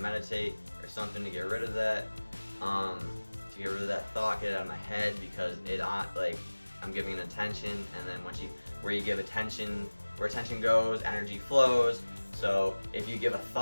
or something to get rid of that, to get rid of that thought, get it out of my head, because like, I'm giving it attention, and then where you give attention, where attention goes, energy flows. So if you give a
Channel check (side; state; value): both; inverted; correlation -1.00